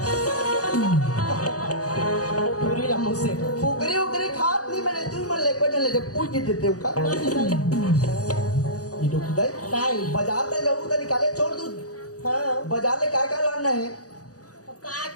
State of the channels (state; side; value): late; right; 0.67 ms